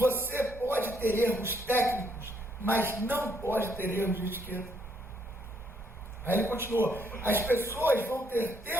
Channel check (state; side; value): normal; both; correlation 0.71